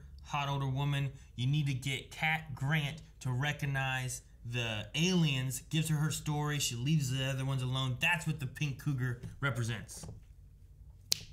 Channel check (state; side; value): identical; both; correlation 1.00